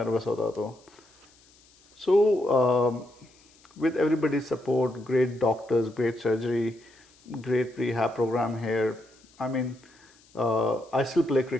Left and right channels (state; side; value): noise; left; hiss, 29 dB below the sound